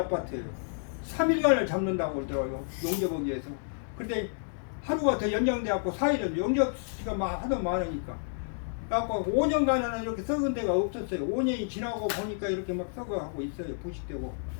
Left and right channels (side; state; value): right; silent; digital silence